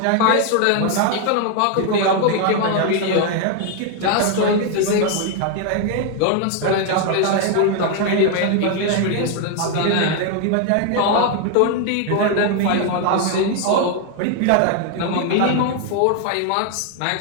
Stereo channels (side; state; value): both; different; correlation 0.01